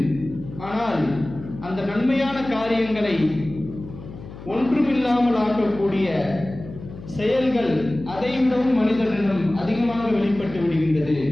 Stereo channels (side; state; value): left; noise; hum, 14 dB below the sound